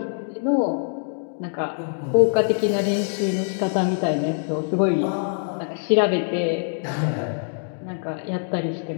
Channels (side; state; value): right; silent; 63 dB below the other